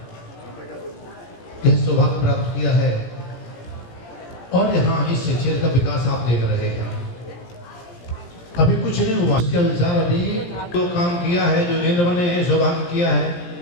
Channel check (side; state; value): right; late; 17 ms